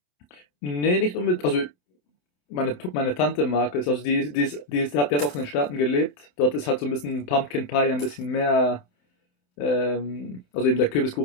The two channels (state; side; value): late; right; 28 ms